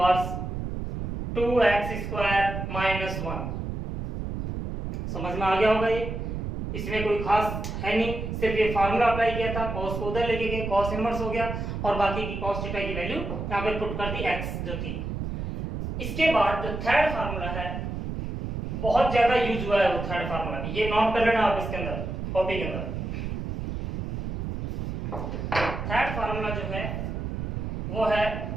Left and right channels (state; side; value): noise; right; rumble, 4 dB below the sound